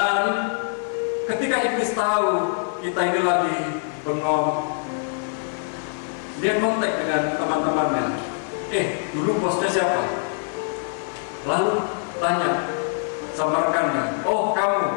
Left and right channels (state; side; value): silent; right; 62 dB below the other